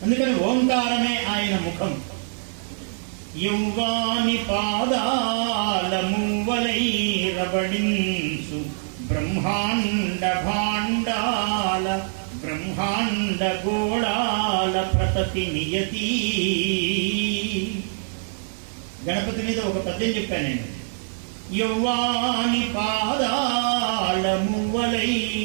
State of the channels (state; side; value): silent; left; 63 dB below the other